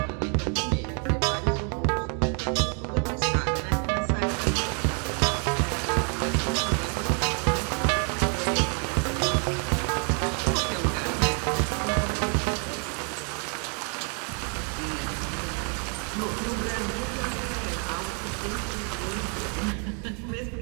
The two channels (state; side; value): quieter; left; 39.1 dB